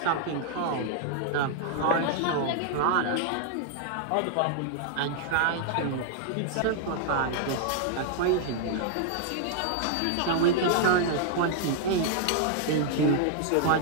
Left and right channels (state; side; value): different; both; correlation -0.01